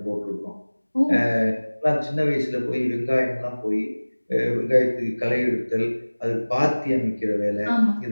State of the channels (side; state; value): both; inverted; correlation -1.00